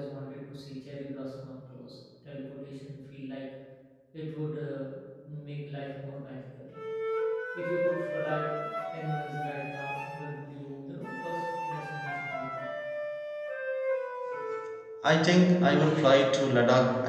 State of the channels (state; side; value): identical; both; correlation 1.00